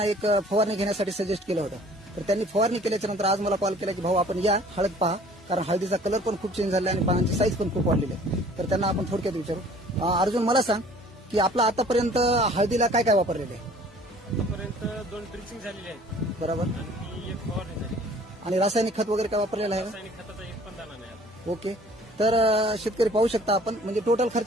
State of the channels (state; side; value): normal; both; correlation 0.52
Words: एक फवारणी घेण्यासाठी सजेस्ट केलं होतं. तर त्यांनी फवारणी केल्याच्या नंतर आज मला कॉल केला की भाऊ आपण या हळद पहा, कारण हळदीचा कलर पण खूप चेंज झाला आणि पानांची साईज पण खूप वाढलेली आहे. तर त्यांना आपण थोडक्यात विचारू. अर्जुन, मला सांग की आपला आतापर्यंत हळदीला काय काय वापरलेलं आहे? आतापर्यंत 2 ड्रिचिंग झालेली आहेत बरोबर. आणि एक फवारणी झाली. आणि रासायनिक खत वगैरे काय वापरलेलं आहे? रासायनिक खताचा एक पण दाणा नाही आता. ओके. तर शेतकरी पाहू शकता आपण, म्हणजे टोटल